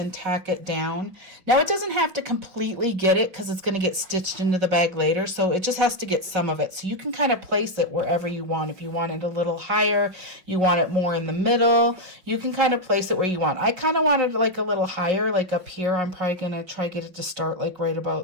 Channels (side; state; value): left; late; 5.7 ms